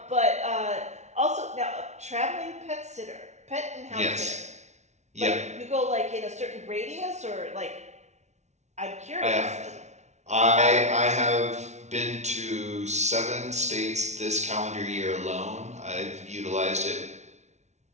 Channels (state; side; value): late; left; 0.33 ms